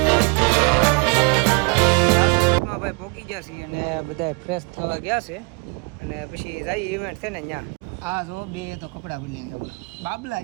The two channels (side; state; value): left; quieter; 32.6 dB